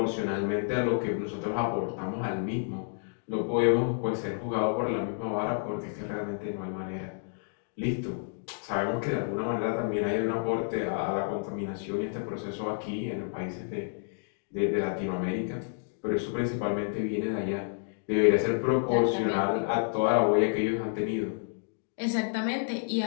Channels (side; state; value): right; silent; digital silence